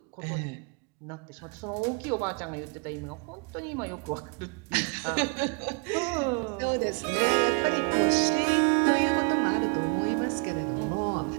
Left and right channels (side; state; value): left; quieter; 35.9 dB